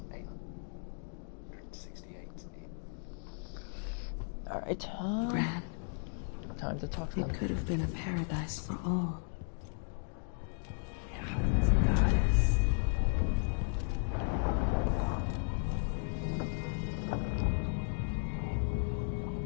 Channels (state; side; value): silent; right; 54 dB below the other